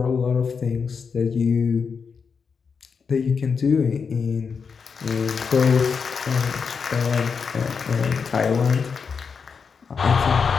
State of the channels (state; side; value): quieter; right; 5.8 dB